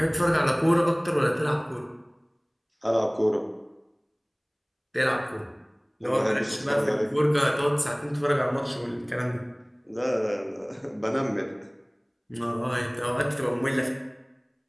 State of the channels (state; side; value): identical; both; correlation 1.00